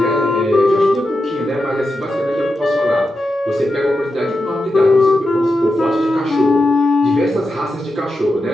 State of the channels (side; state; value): both; normal; correlation 0.89